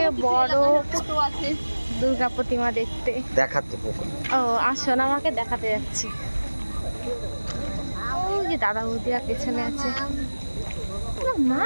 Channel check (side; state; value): both; inverted; correlation -1.00